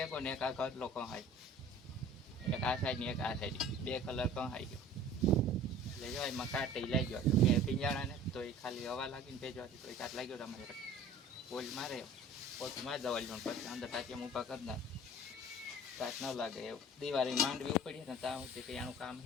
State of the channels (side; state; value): both; normal; correlation 0.45